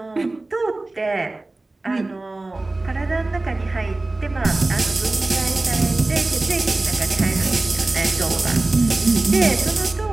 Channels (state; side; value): quieter; left; 3.0 dB